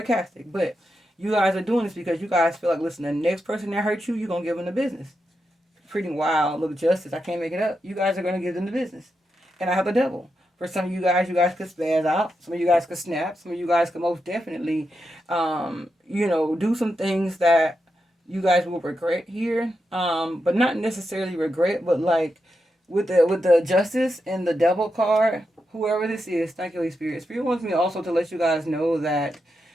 but you guys are doing this because you guys feel like, listen, the next person that hurts you, you're going to give them the business. Pretty wild. Look, justice. I can't make it up. You guys are going to give them the business. And I have the devil. For some of you guys could spaz out. Some of you guys could snap. Some of you guys could most definitely, do some things that you guys will regret here. But not necessarily regret, but like with the justice and the devil card, whoever this is, thank you, Holy Spirit. Spirit wants me also to let you guys know that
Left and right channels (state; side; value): normal; both; correlation 0.86